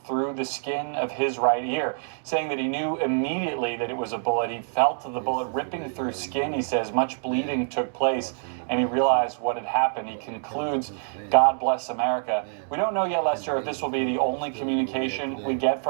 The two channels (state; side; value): silent; left; digital silence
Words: through the skin of his right ear, saying that he knew immediately that it was a bullet. He felt the bullet ripping through skin. He says much bleeding took place, and he realized what had happened. He concludes, God bless America. We don't know yet, Lester, if this will be the only communication we get